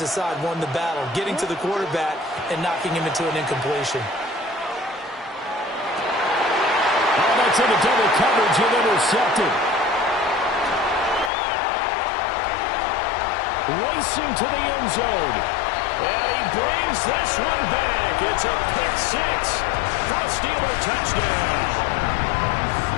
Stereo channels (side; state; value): right; drops out; at 11.3 s